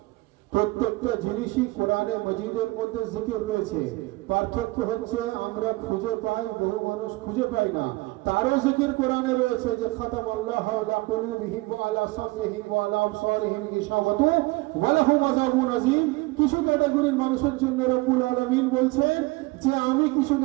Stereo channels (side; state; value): left; quieter; 22.1 dB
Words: প্রত্যেকটা জিনিসই কোরআনে মজিদের মধ্যে জিকির রয়েছে। পার্থক্য হচ্ছে আমরা খুঁজে পাই, বহু মানুষ খুঁজে পায় না। তারও জিকির কোরআনে রয়েছে যে খাতামাল্লাহু আলা কুলুবিহিম ওয়া আলা সামইহিম ওয়া আলা আবসারিহিম গিশাওয়াতু ওয়া লাহুম আযাবুন আযীম। কিছু ক্যাটাগরির মানুষের জন্য রব্বুল আলামিন বলছেন যে আমি কিছু